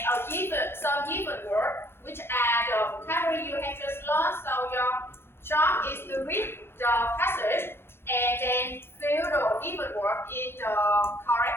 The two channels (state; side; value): late; right; 0.12 ms